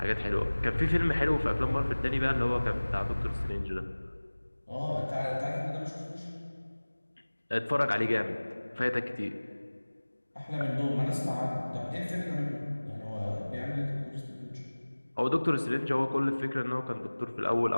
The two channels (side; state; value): both; inverted; correlation -1.00